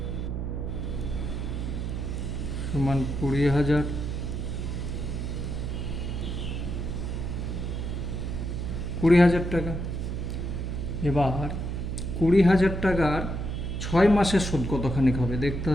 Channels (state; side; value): noise; right; hum, 3 dB below the sound